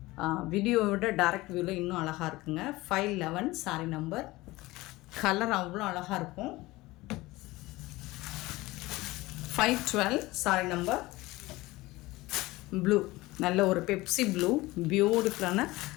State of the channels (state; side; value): quieter; right; 19.8 dB